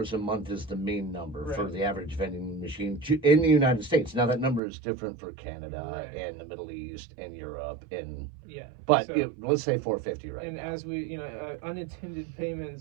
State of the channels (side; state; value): left; drops out; at 4.6 s